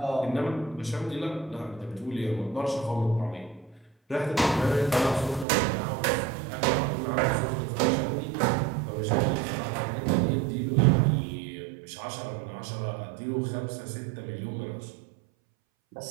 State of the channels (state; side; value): drops out; left; at 5.5 s